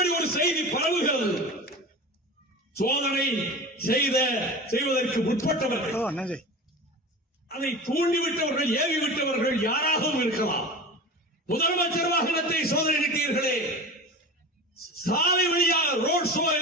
ஒரு செய்தி பரவுகிறது. சோதனை செய்வதற்கு முற்பட்டவர்கள், அதை தூண்டிவிட்டவர்கள், ஏவிவிட்டவர்கள் யாராகவும் இருக்கலாம். முதலமைச்சர் வாகனத்தை சோதனையிட்டீர்களே, சாலை வழியாக ரோட் ஷோ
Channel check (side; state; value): both; normal; correlation 0.31